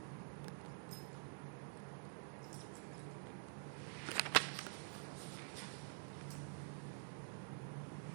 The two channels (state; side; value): silent; left; digital silence